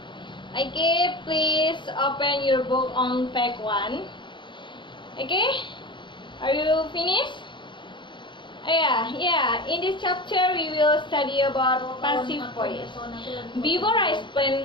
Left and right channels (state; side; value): late; right; 0.23 ms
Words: Okay, please open your book on page 1. Okay, are you finished? Yeah. In this chapter, we will study about passive voice. Before I